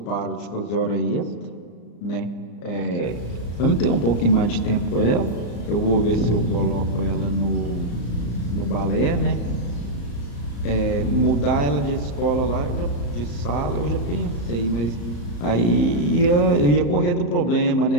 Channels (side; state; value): right; late; 34 ms